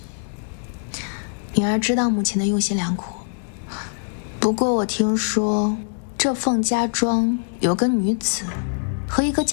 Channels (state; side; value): silent; right; 64 dB below the other